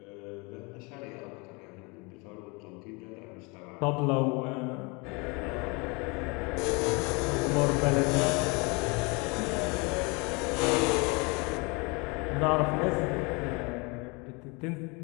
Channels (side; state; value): right; quieter; 28.9 dB